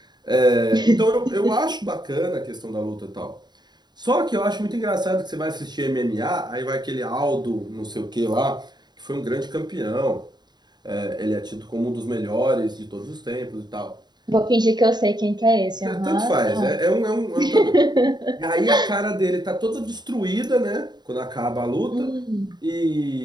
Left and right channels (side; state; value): left; late; 0.21 ms